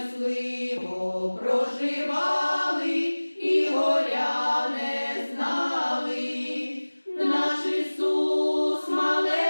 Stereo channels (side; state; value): both; inverted; correlation -1.00